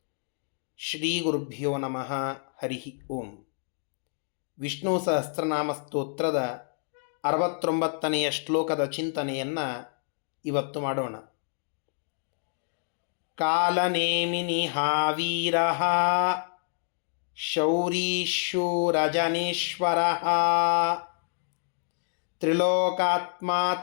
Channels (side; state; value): right; silent; digital silence